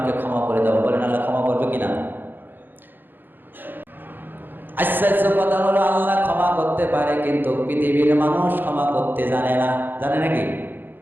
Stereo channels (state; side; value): late; left; 0.093 ms